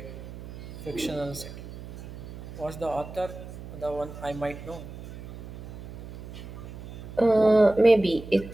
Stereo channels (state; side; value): noise; right; hum, 12 dB below the sound